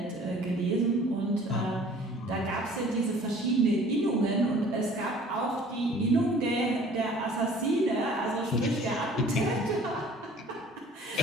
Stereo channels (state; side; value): normal; both; correlation 0.51